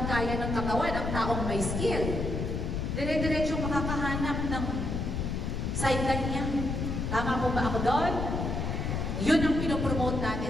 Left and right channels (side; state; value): left; noise; rumble, 2 dB below the sound